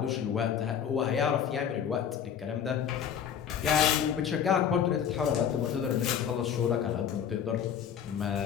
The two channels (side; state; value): right; quieter; 8.5 dB